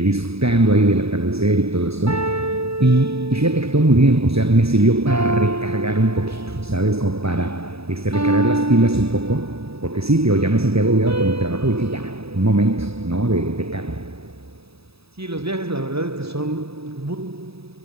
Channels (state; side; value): late; left; 0.77 ms